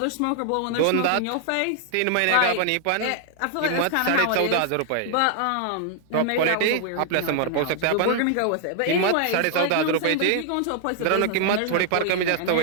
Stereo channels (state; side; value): different; both; correlation -0.01